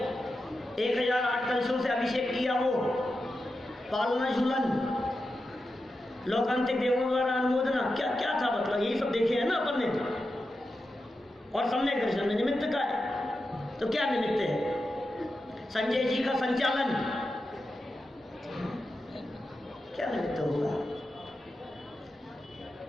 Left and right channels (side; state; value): both; normal; correlation 0.90